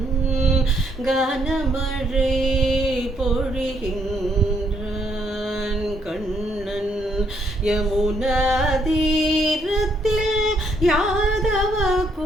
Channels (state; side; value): normal; both; correlation 0.72